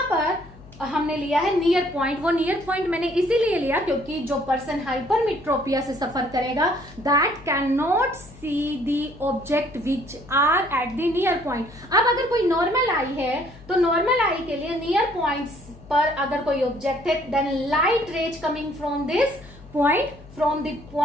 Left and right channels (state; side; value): noise; left; hum, 21 dB below the sound